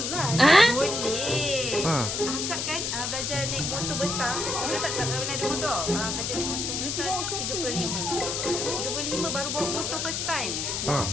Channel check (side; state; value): left; noise; hiss, 1 dB below the sound